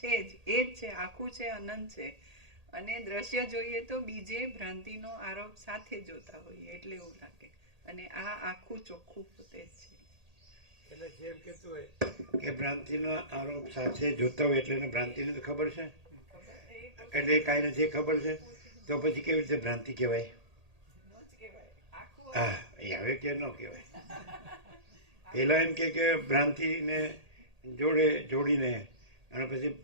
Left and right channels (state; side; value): late; left; 1.8 ms